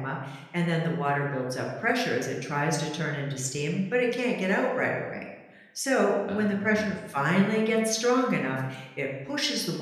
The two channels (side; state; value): both; identical; correlation 1.00